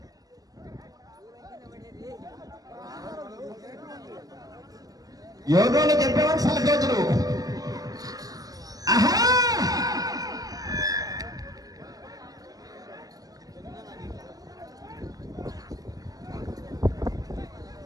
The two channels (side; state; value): left; late; 0.18 ms